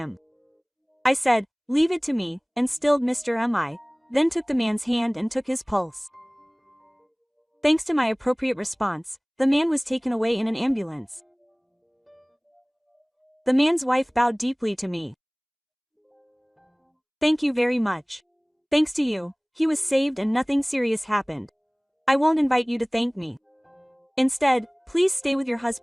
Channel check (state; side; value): identical; both; correlation 1.00